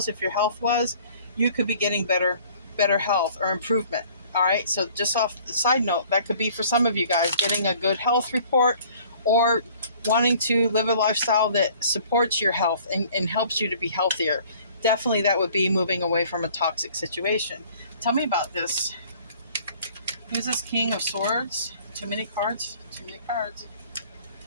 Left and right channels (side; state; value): both; inverted; correlation -0.53